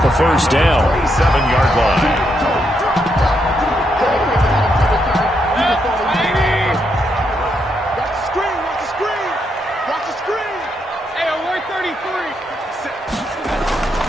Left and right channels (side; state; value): both; normal; correlation 0.79